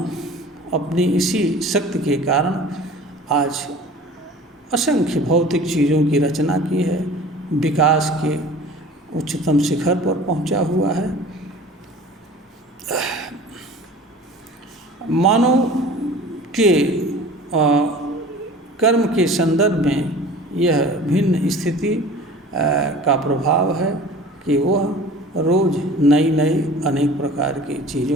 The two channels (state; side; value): normal; both; correlation 0.43